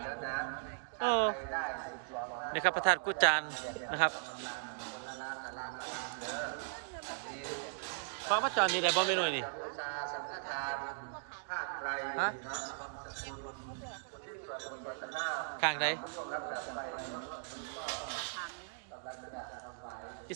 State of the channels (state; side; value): silent; left; digital silence